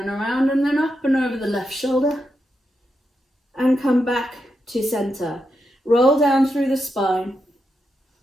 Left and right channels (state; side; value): normal; both; correlation 0.85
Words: around and then up and over the left shoulder. And come back to center. Roll down through the spine.